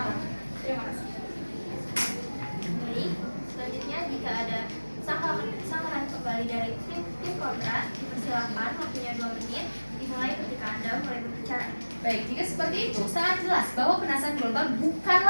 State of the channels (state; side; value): inverted; both; correlation -1.00